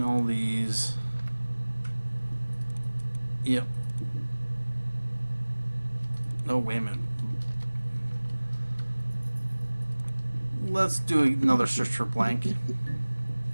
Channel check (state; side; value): inverted; both; correlation -1.00